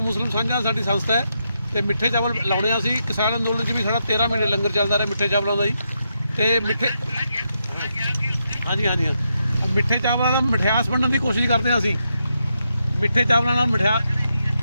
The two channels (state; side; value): inverted; both; correlation -0.83